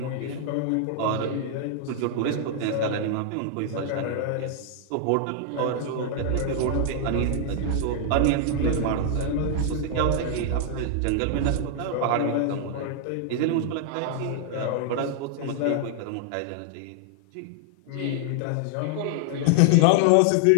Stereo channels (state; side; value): different; both; correlation -0.01